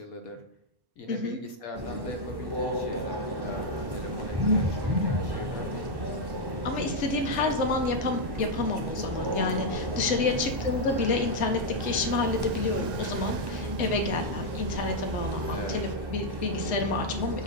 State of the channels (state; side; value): late; left; 1.1 ms